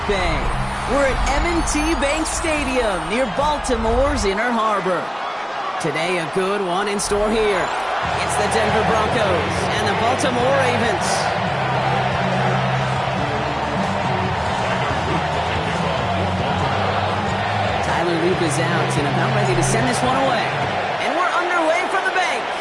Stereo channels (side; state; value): both; identical; correlation 1.00